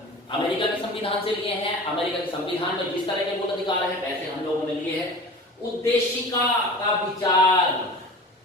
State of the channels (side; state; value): both; normal; correlation 0.37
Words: अमेरिका के संविधान से लिए हैं। अमेरिका के संविधान में जिस तरह के मूल अधिकार हैं वैसे हम लोगों ने लिए हैं। उद्देशिका का विचार,